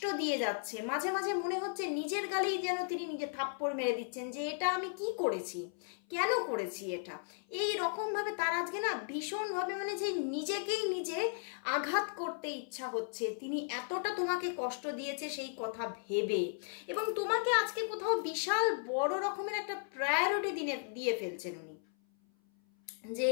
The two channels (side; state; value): right; silent; 54 dB below the other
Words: দিয়ে যাচ্ছে। মাঝে মাঝে মনে হচ্ছে নিজের গালেই যেন তিনি নিজে থাপ্পড় মেরে দিচ্ছেন যে এটা আমি কি করেছি, কেন করেছি এটা। এই রকমভাবে তার আজকে না ভীষণভাবে মানে যে নিজেকেই নিজে আঘাত করতে ইচ্ছা হচ্ছে, তিনি এতটা তোমাকে কষ্ট দিয়েছে সেই কথা ভেবে, এবং তোমাকে আজকে কোথাও বিশাল বড় রকমের একটা প্রায়োরিটি দিয়ে ফেলছেন উনি, যে